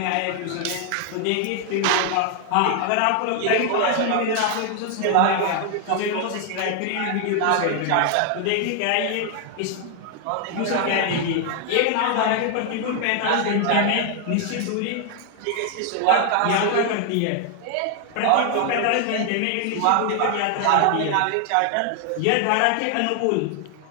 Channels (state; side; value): different; both; correlation 0.00